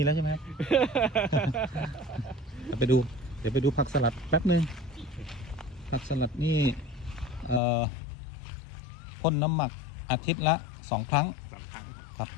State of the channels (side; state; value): right; drops out; at 7.6 s